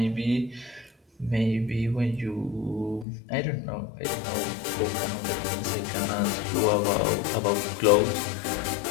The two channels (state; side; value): drops out; right; at 3.1 s